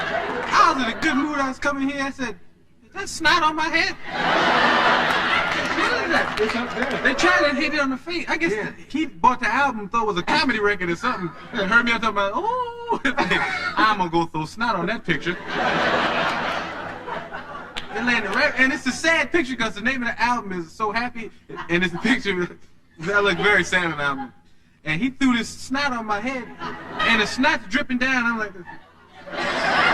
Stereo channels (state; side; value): identical; both; correlation 1.00